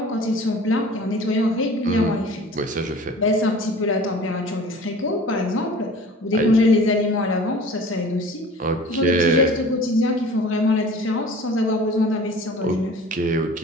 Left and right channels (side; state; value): both; normal; correlation 0.43